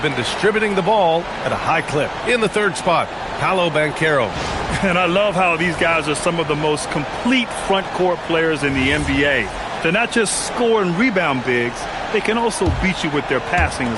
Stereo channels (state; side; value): identical; both; correlation 1.00